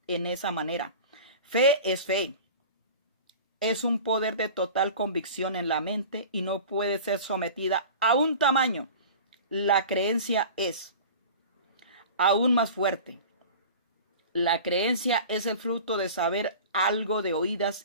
en esa manera. Fe. Es un poder de total convicción en la mente y no puede ser sometida a un tamaño. La creencia es aún más fuerte. La creencia es el fruto de saber algo de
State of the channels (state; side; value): inverted; both; correlation -0.38